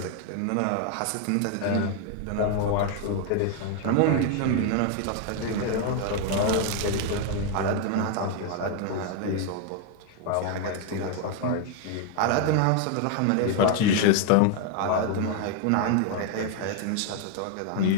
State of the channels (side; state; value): both; different; correlation 0.01